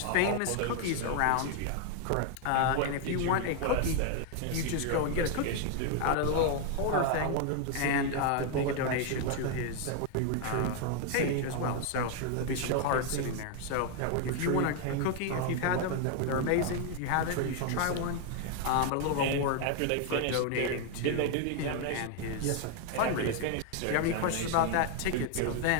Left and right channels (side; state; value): both; different; correlation 0.00